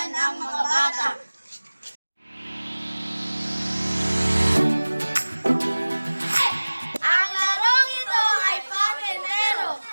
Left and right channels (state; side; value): inverted; both; correlation -1.00